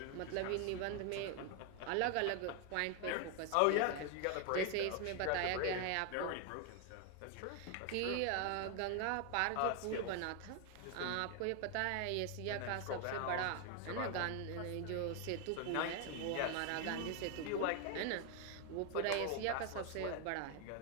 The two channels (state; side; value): different; both; correlation 0.01